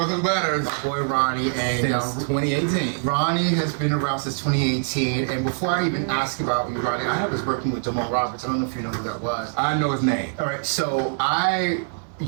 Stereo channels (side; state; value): left; silent; 58 dB below the other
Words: and butters. My boy Ronnie. And since 2018. Ronnie has been around since 2018. And before I even ask about you, Ronnie, I was working with Jamal Roberts. I don't know if you know who that was. I know his name. All right, so